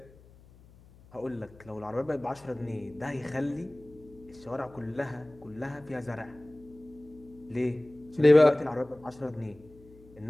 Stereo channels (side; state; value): left; noise; hum, 24 dB below the sound